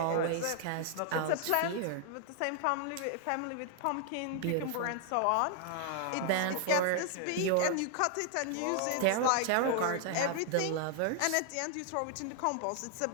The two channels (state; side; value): different; both; correlation 0.00